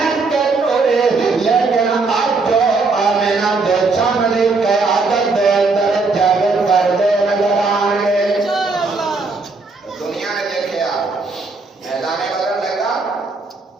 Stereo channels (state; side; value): quieter; left; 3.9 dB